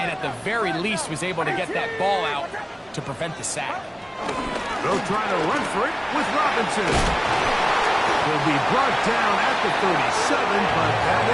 at the very least was able to get that ball out to prevent the sack. They'll try to run for it with Robinson. He'll be brought down at the 37, but that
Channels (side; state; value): both; identical; correlation 1.00